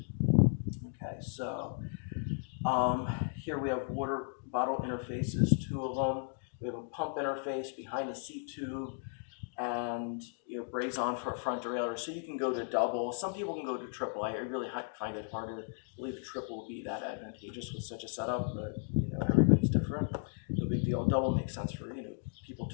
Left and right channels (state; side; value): silent; right; 54 dB below the other